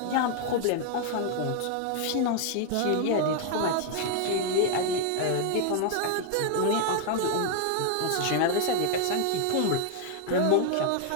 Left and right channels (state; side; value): different; both; correlation 0.00